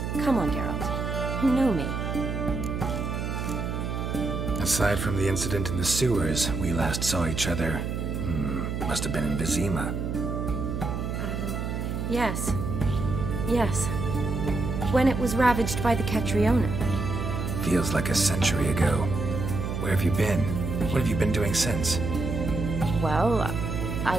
Come on, Geralt. You know me. Aside from the incident in the sewers, we last saw each other... must have been in Vizima. Yes. Yes. When it was ravaged by the Catriona. Feels like a century ago. Where have you been? What have you been doing since? Well, I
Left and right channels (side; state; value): right; noise; hum, 3 dB below the sound